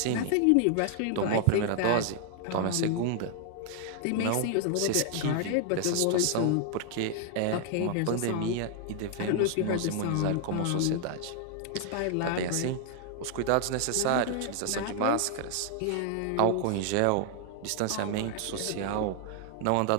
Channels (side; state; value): both; different; correlation 0.00